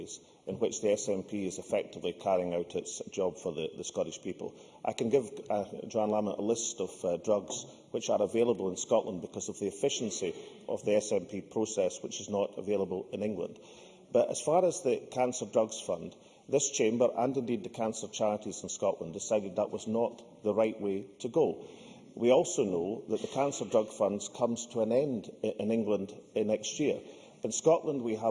in which the SNP is effectively carrying out its job for the Scottish people. I can give Johann Lamont a list of drugs which are available in Scotland because of the efficiency of the SNP process, which is not available in England. But as far as the Cancer Drugs Fund, this chamber, and indeed the cancer charities in Scotland, decided that was not the right way to go. We also know that the Cancer Drug Fund comes to an end in England next year. In Scotland, we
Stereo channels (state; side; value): identical; both; correlation 1.00